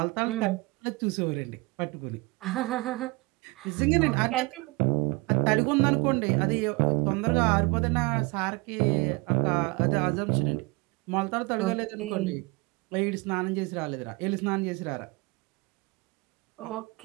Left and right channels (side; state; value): left; quieter; 25.8 dB